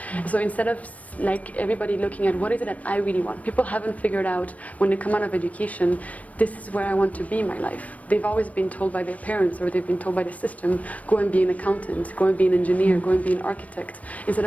So instead of like everybody looking at what is it that I really want, people haven't figured out when they come out of education, this is where I want to be in my life. They've always been told by their parents, or they've been told by the system, go and be an accountant, go and be an engineer, go and be an architect, instead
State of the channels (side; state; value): right; late; 0.068 ms